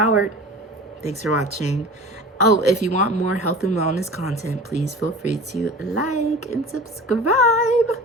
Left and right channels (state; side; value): normal; both; correlation 0.38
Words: Thanks for watching. Oh, if you want more health and wellness content, please feel free to like and subscribe.